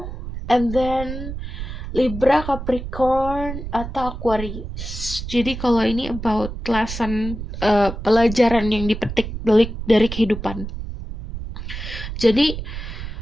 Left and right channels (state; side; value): noise; right; rumble, 8 dB below the sound